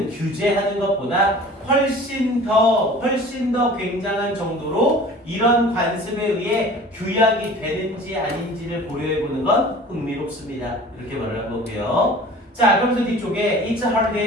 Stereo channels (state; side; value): normal; both; correlation 0.44